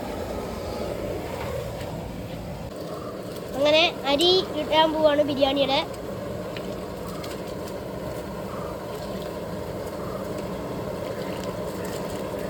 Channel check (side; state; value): both; identical; correlation 1.00